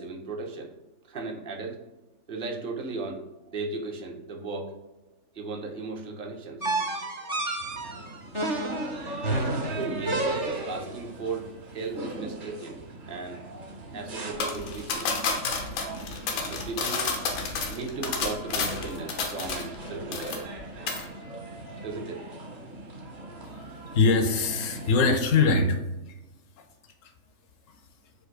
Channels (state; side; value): late; right; 3.4 ms